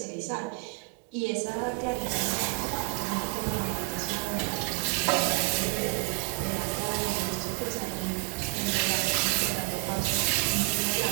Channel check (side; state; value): left; quieter; 35.0 dB